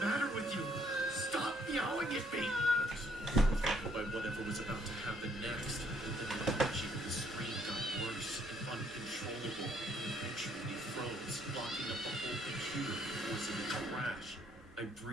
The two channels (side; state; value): both; normal; correlation 0.67